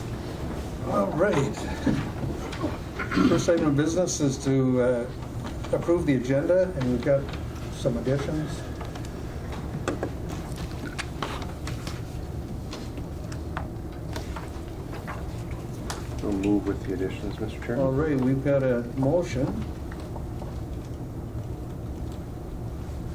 All right. First item of business is to approve the agenda, and we've got some additions. We'll move with the additions, Mr. Chairman. All right, we've got a motion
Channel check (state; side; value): identical; both; correlation 1.00